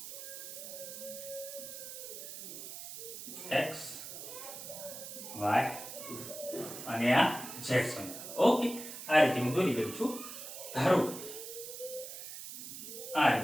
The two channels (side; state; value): right; noise; hiss, 10 dB below the sound